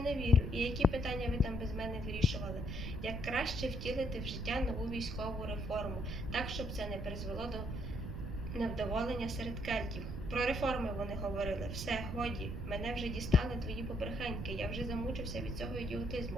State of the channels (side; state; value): right; noise; rumble, 5 dB below the sound